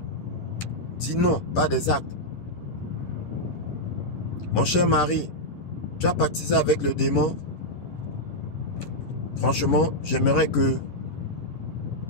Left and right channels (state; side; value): late; right; 11 ms